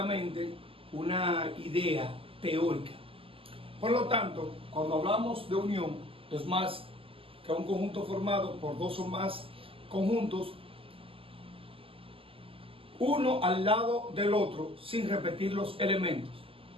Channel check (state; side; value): late; left; 0.26 ms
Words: una idea teórica. Por lo tanto, cuando hablamos de unión, es más que un conjunto formado por dos o más conjuntos, uno al lado del otro sin repetir los elementos.